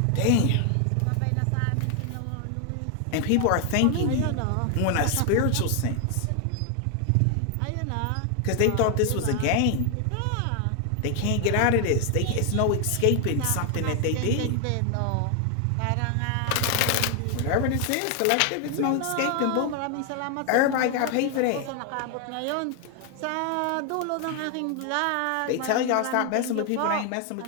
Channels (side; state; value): both; different; correlation 0.00